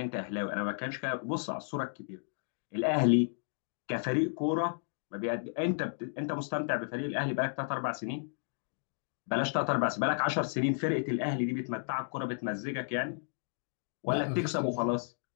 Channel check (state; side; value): silent; right; digital silence